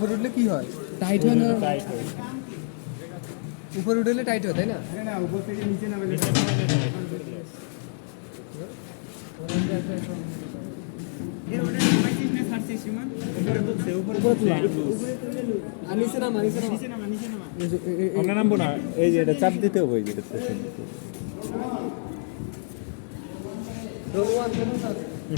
উঠলে কি হয়? টাইট হয় না? উপরে উঠলে টাইট হয়, তাই না? না, উপর থেকে নিচে নামে উপরে তোলা। আর নিচে নামা, নিচে নামা। আমরা নামবো না, এই যে এটা চাপ দিতে হবে, এই যে এটা রোল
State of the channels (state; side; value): silent; right; digital silence